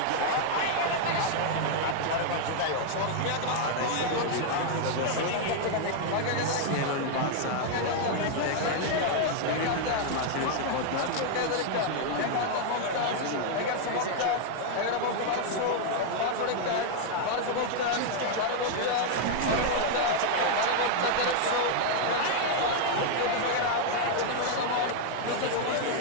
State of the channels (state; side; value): different; both; correlation 0.00